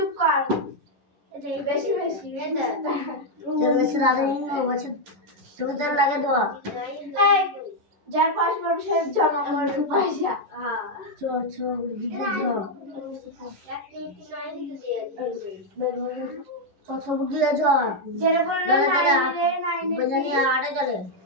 কর বেশি বেশি চল বেশি রাধে নিয়ে বসে তোদের লাগে তো এই যার পাঁচ বছর জমা করতে পয়সা হ্যাঁ চো চো দিতে যাও চো চো দিয়ে যাও যেটা বললো নাই বজানি আড়ে চলে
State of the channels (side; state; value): left; late; 11 ms